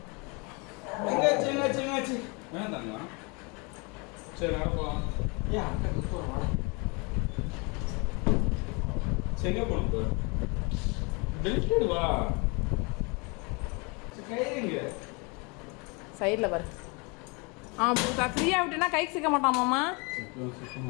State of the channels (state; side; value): quieter; right; 30.2 dB